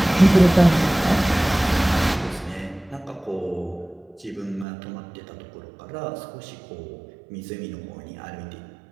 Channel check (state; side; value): drops out; left; at 4.7 s